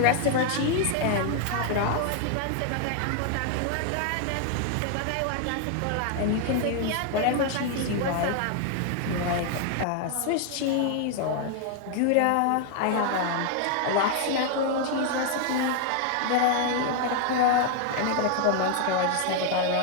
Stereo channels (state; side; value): different; both; correlation 0.00